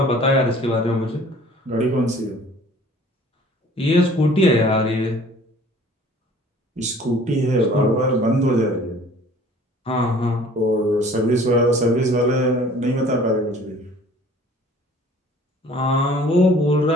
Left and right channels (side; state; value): both; normal; correlation 0.51